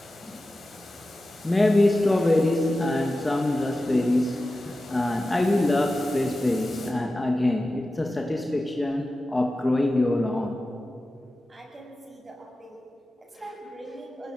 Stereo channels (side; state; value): both; normal; correlation 0.94